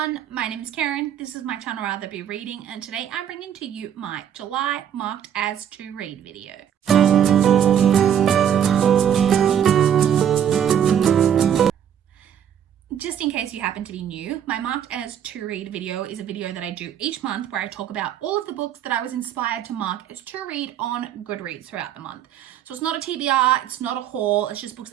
my name is Karen, this is my channel Rather Be Reading, and today I'm bringing to you my July marked as to read video. Just in case you happen to be new, my marked as to read video is a video that I do each month where I talk about all of the books that I was inspired to mark as to read on Goodreads throughout the month. So it's not a TBR, it's not a haul, it's just books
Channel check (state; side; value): quieter; left; 9.3 dB